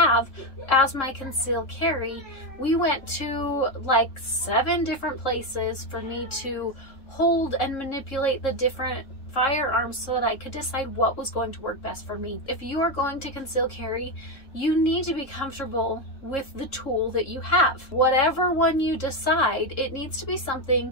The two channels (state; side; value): late; right; 3.7 ms